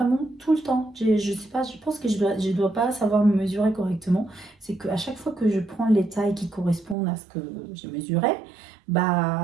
tout le temps. Je sais pas, je pense que je dois pas savoir me mesurer correctement. C'est qu'à chaque fois que je prends les tailles qui correspondent à ce que j'ai mesuré,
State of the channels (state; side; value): drops out; left; at 7.0 s